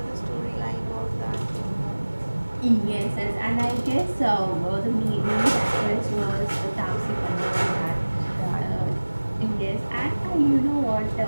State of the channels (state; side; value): inverted; both; correlation -1.00